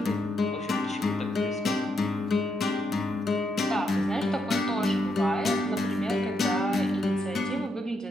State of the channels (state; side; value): normal; both; correlation 0.80